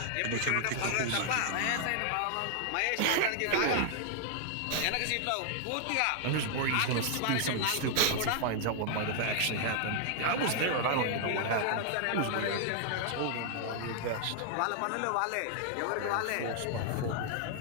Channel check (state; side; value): different; both; correlation 0.00